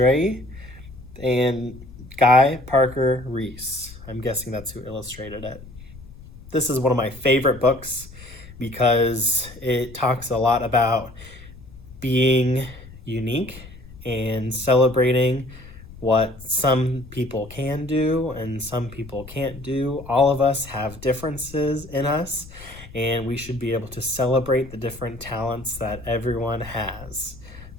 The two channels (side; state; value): left; noise; rumble, 17 dB below the sound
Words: and Guy Parker Reese. I'm guessing that's who illustrated it. This is one of my favorite books because it talks a lot about being unique and celebrating what some people can do and some people can't do. All of us have differences in us, and we should be able to celebrate the different talents that everyone has.